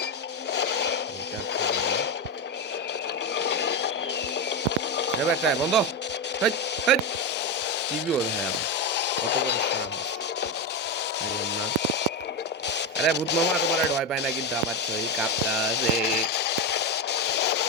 একটা বন্ধ। হেট, হেট। কি জোর ভাই আমার। কত বড় সাহস। বললাম না। আরে ভূত মামা তোমার ভয় পায় না, কিন্তু আমার শরীর কাঁপতাছে।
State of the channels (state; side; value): normal; both; correlation 0.12